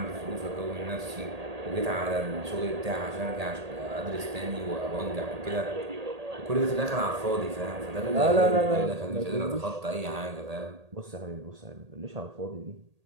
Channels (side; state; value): left; late; 1.8 ms